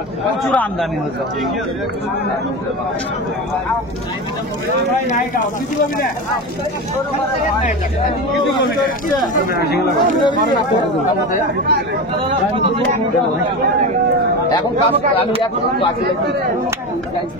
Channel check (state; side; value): normal; both; correlation 0.23